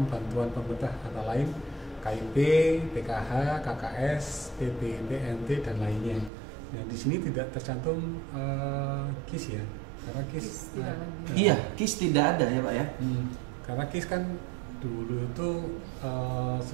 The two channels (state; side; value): drops out; left; at 6.3 s